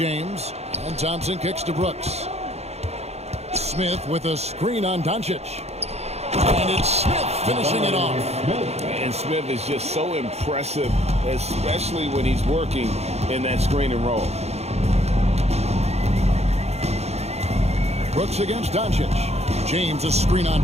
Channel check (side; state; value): left; late; 0.31 ms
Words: and Thompson kicks to Brooks. Smith with a screen on Doncic. And it's Smith finishing it off. And Smith is just so impressive, especially when he's working in that screen and roll. Brooks against Doncic. James a screen on